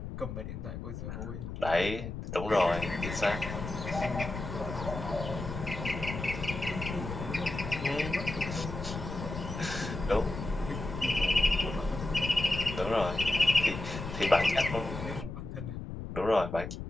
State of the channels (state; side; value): noise; left; rumble, 7 dB below the sound